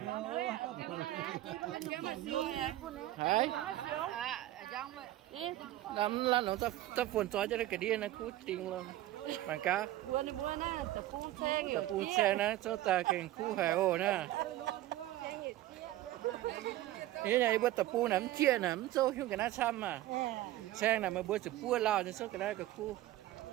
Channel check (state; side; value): quieter; left; 15.0 dB